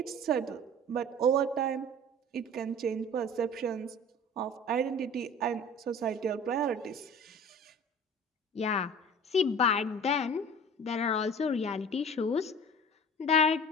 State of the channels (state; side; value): normal; both; correlation 0.41